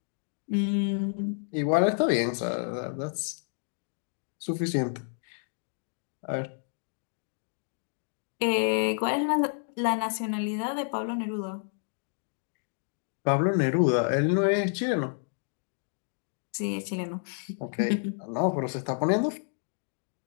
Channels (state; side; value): silent; right; 58 dB below the other